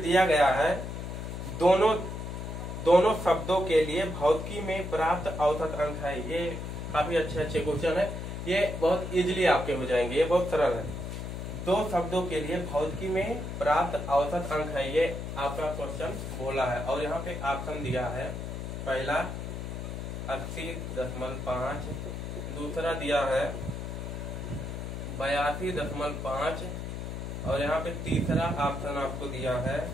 गया है, दोनों शब्दों के लिए भौतिकी में प्राप्त औसत अंक है। ये काफी अच्छे क्वेश्चन है, ये बहुत इजीली आपके हो जाएंगे, ये बहुत सरल है। दो शब्दों के लिए भौतिकी में प्राप्त औसत अंक है, ये आपका क्वेश्चन बोला है। और यहाँ पे ऑप्शन दिया है, पहला 80.5, दूसरा दिया है 82.5 और यहाँ पे तीसरा ऑप्शन आपको दिया है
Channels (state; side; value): noise; left; hum, 6 dB below the sound